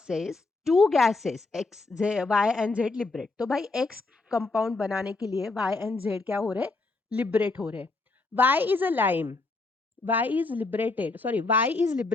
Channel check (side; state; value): right; quieter; 3.5 dB